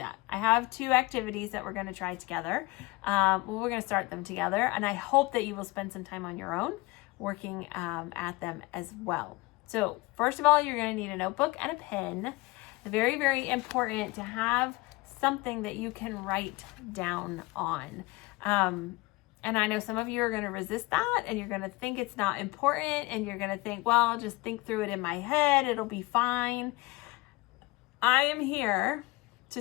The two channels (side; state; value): right; quieter; 22.6 dB